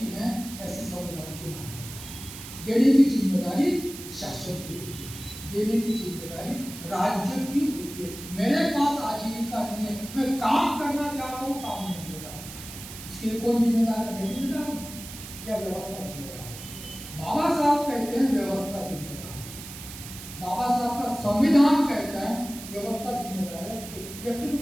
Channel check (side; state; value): right; noise; hiss, 12 dB below the sound